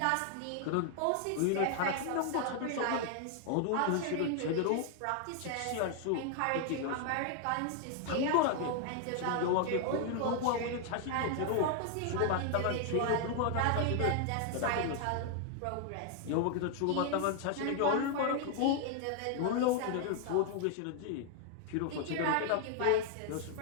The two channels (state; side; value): different; both; correlation 0.00